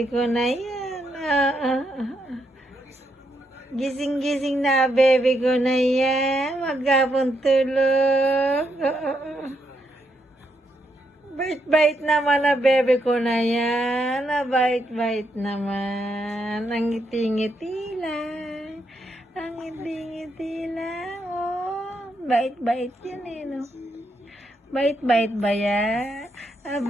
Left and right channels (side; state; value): both; normal; correlation 0.79